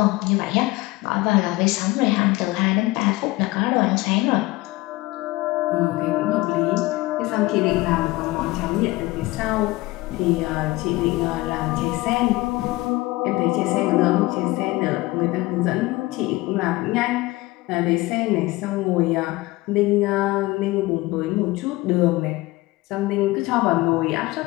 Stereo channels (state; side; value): quieter; right; 20.0 dB